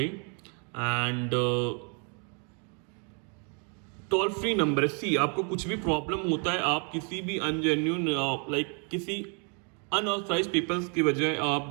एंड टोल फ्री नंबर सी, आपको कुछ भी प्रॉब्लम होता है, आप किसी भी अनजेन्यून लाइक किसी अनऑथराइज पीपल्स की वजह आप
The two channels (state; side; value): quieter; left; 39.0 dB